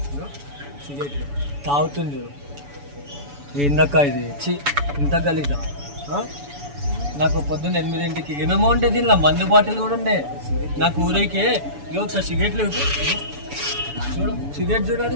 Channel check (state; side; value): late; left; 7.0 ms